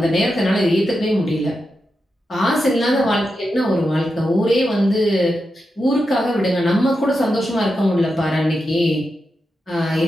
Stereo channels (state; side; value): normal; both; correlation 0.88